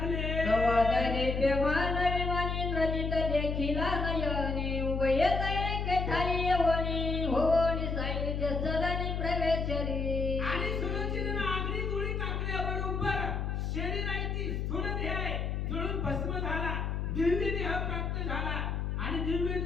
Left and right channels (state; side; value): noise; left; hum, 1 dB below the sound